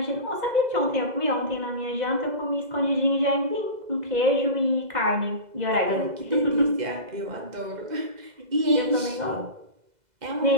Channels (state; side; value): late; left; 2.0 ms